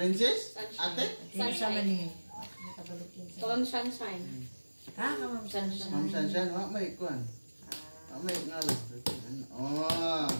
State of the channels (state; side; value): inverted; both; correlation -1.00